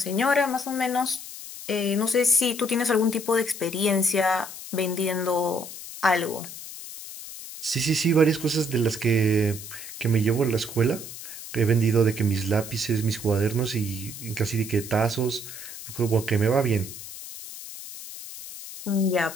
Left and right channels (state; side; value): noise; left; hiss, 12 dB below the sound